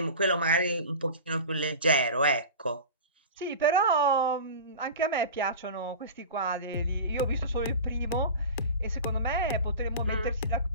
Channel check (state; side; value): inverted; both; correlation -0.33